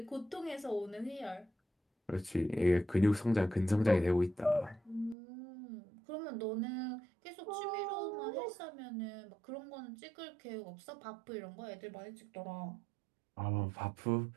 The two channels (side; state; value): left; drops out; at 5.2 s